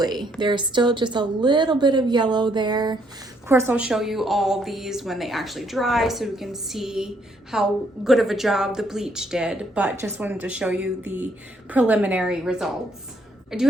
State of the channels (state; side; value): normal; both; correlation 0.70